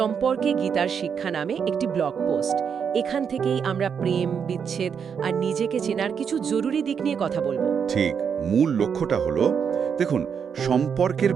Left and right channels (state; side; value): quieter; left; 7.0 dB